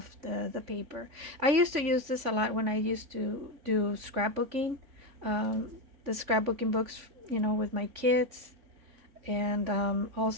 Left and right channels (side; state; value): left; late; 3.5 ms